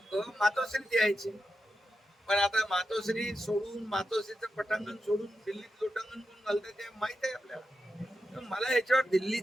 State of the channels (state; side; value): normal; both; correlation 0.89